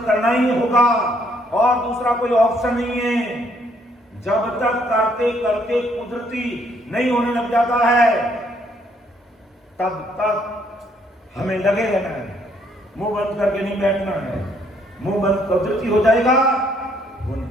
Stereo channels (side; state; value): both; normal; correlation 0.68